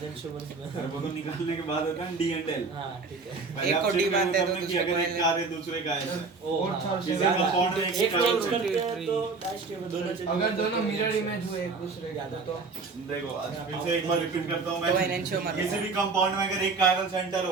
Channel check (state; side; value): quieter; left; 4.3 dB